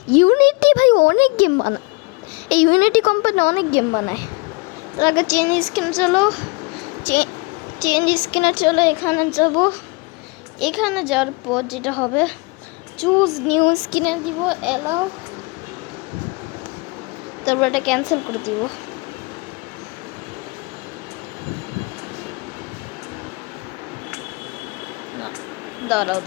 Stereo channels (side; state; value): right; quieter; 28.5 dB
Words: ইউনিটি ভাই অনেক গেম বানায়, এই ইউনিটি কোম্পানি অনেক গেম বানায়। তার আগে চেঞ্জ স্ক্রিনে চলো, এখানে যাবো। এখানে যাওয়ার পর যেটা হবে, চুজ নিউ স্ক্রিনে দিব, এলাও, তারপর এটা ক্যান্সেল করে দিব। দাঁড়াও